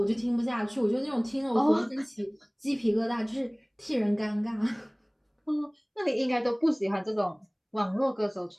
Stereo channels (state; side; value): identical; both; correlation 1.00